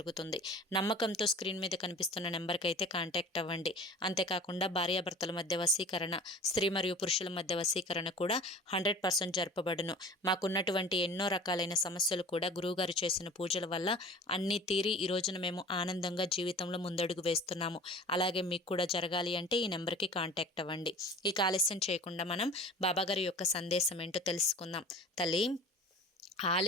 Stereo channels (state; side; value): normal; both; correlation 0.41